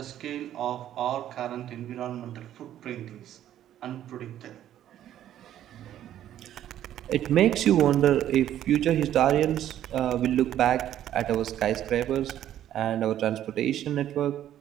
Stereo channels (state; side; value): quieter; left; 11.6 dB